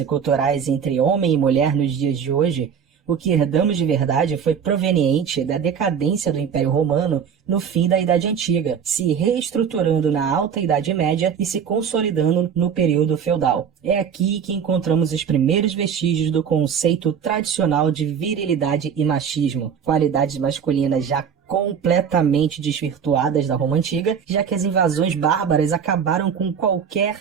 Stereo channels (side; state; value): left; quieter; 7.4 dB